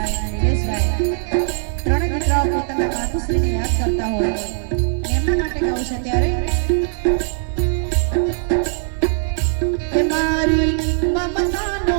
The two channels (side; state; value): left; silent; 66 dB below the other